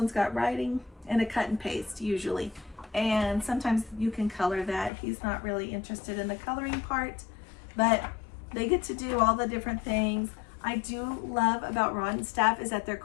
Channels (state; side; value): drops out; right; at 4.9 s